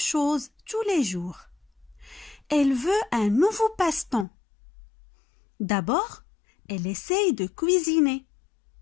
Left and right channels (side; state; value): right; drops out; at 4.2 s